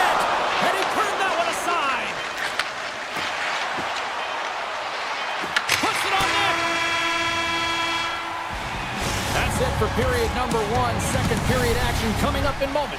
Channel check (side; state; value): both; identical; correlation 1.00